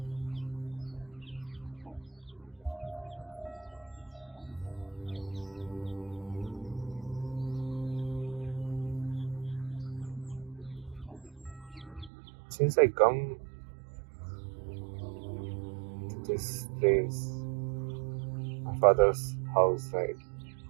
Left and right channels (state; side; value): drops out; left; at 12.1 s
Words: Since I come to this place, my father's house, right?